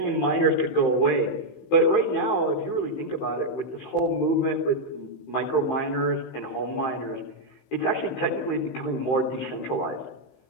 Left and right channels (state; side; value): late; right; 15 ms